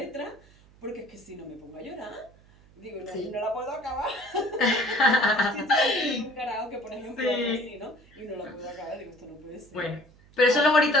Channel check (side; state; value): right; noise; hum, 26 dB below the sound